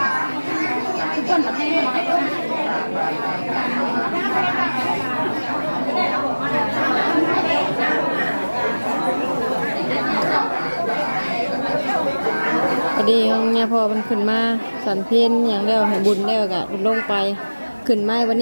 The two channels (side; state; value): both; inverted; correlation -1.00